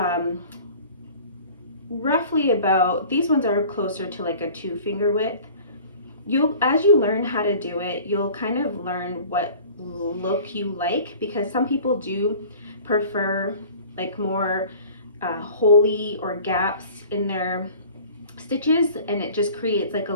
roughly about, these ones are closer to like a 2 finger width. As you learn how to do it, you'll kind of learn what look you like, because some people do prefer like more holey or gaps in their stitches, and it just creates like a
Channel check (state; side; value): inverted; both; correlation -0.45